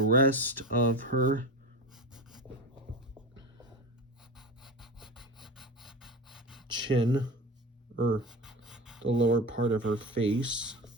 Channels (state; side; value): normal; both; correlation 0.26